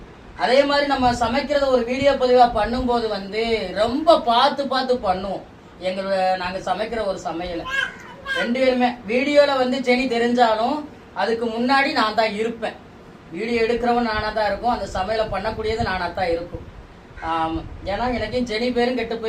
அதே மாதிரி நம்ம சமைக்கிறத ஒரு வீடியோ பதிவா பண்ணும்போது வந்து ரொம்ப பார்த்து பார்த்து பண்ணுவோம். நாங்க சமைக்கிற ஒரு சமையல 2 பேருமே வீடியோல வந்து செனி தெரிஞ்சாலும் அதுக்கு முன்னாடி நான் தான் இருப்பேன். வீடியோ எடுக்கிறவன் நானா தான் இருக்கும், அந்த சமையலை பண்ணக்கூடியது நானா தான் இருக்கும். ஏன்னா எனக்கும் செனி பேரும் கெட்டு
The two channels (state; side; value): identical; both; correlation 1.00